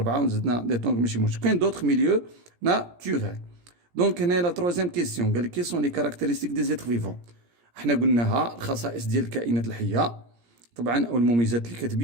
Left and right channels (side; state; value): left; late; 17 ms